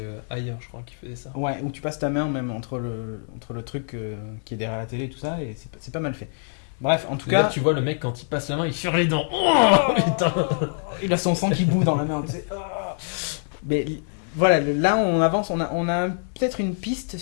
ailleurs, je crois, qui faisait ça. Ouais, où tu passes ta main même entre le truc qui est derrière la télé et tout ça, et c'est pas mal fait. Bref, en tout D'ailleurs, cas, tu vois le mec quand il passe la main, il serre les dents. Oh putain. il a son sang qui bout dans la main. Tu sais. Ah. Mais voilà, là on avance, on a peut-être une piste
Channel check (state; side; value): silent; right; digital silence